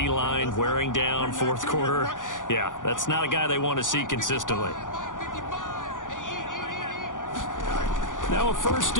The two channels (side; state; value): right; late; 0.88 ms